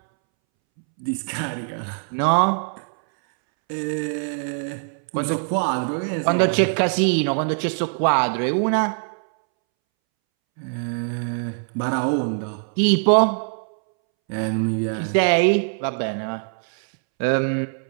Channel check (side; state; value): left; silent; 64 dB below the other